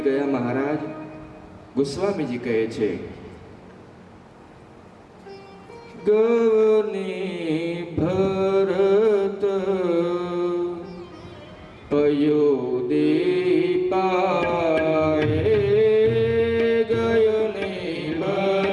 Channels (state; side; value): identical; both; correlation 1.00